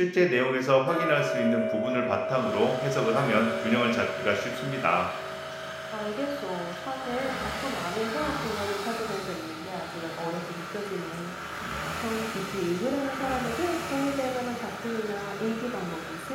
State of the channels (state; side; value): identical; both; correlation 1.00